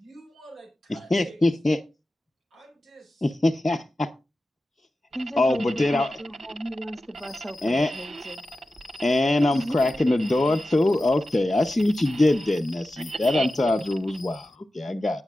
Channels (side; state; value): both; normal; correlation 0.93